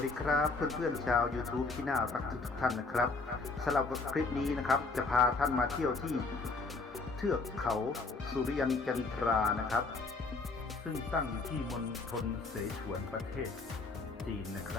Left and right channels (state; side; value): quieter; right; 3.8 dB